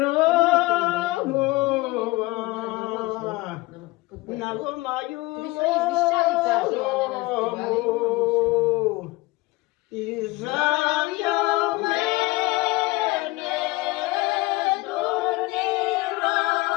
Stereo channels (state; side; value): quieter; right; 21.5 dB